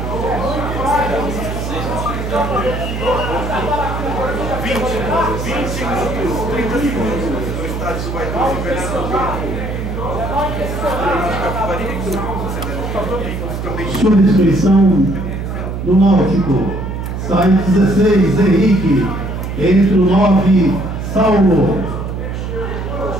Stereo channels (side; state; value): right; noise; hum, 5 dB below the sound